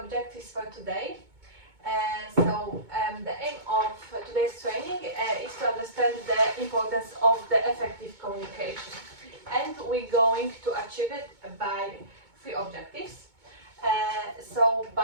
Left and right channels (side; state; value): left; late; 2.2 ms